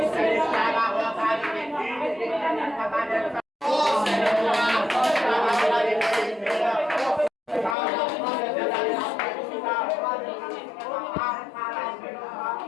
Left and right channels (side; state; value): right; drops out; at 7.8 s